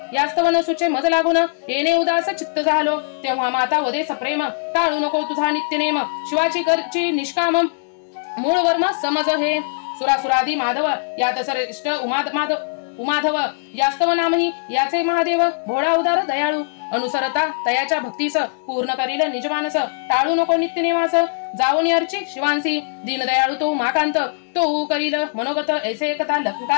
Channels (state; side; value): silent; right; digital silence